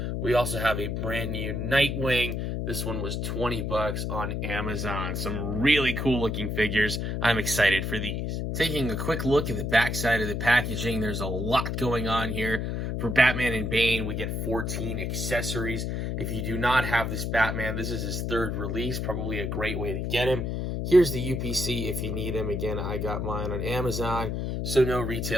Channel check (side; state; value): left; noise; hum, 2 dB below the sound